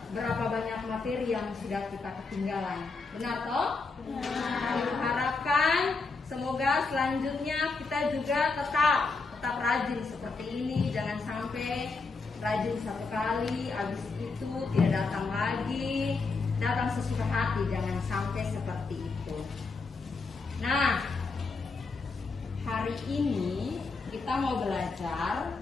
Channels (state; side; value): quieter; right; 4.1 dB